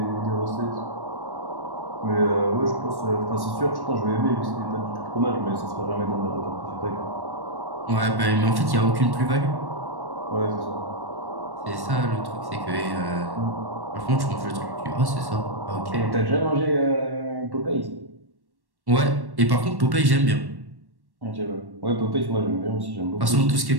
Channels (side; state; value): left; late; 1.1 ms